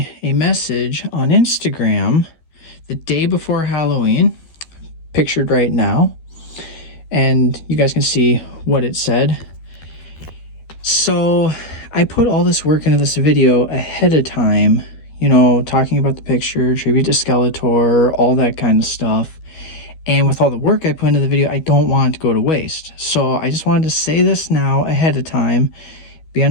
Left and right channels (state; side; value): late; right; 13 ms